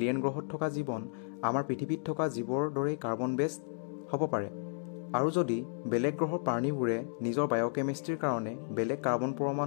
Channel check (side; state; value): right; silent; digital silence